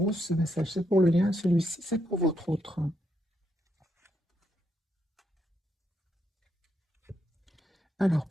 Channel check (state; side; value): normal; both; correlation 0.79